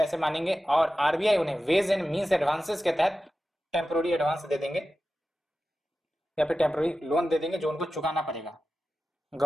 मांगेंगे और आरबीआई उन्हें वेज एंड मीन्स एडवांसेस के तहत टेम्पोररी एडवांस दे देंगे या फिर टेम्पोररी लोन दे देंगे जो उनको चुकाना पड़ेगा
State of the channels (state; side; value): normal; both; correlation 0.93